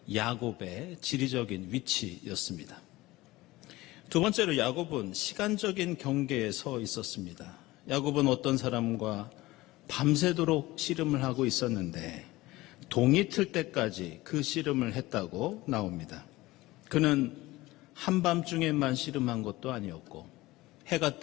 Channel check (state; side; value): quieter; right; 19.1 dB